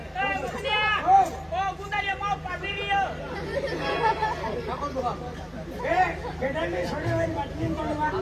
गुंडारिया माव पाबिरियो ए गेडा में छोड़े हुए बाटलीन बनवा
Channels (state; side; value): identical; both; correlation 1.00